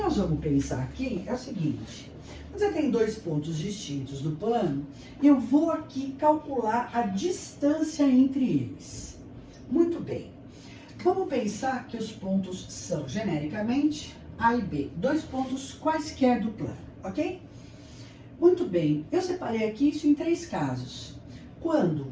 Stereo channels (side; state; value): both; identical; correlation 1.00